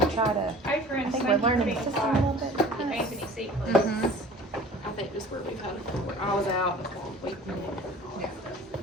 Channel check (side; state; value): both; normal; correlation 0.45